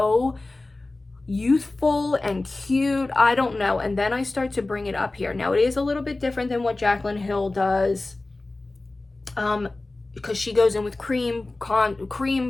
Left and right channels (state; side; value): quieter; right; 3.1 dB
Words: youthful and cute. I don't know. And then I start to bring it up here. Now it is a little bit different than what Jaclyn Hill does, because she goes in with cream